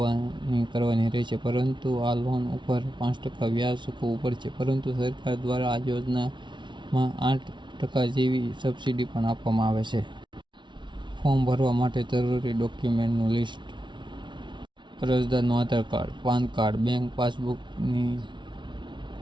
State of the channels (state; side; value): late; left; 0.23 ms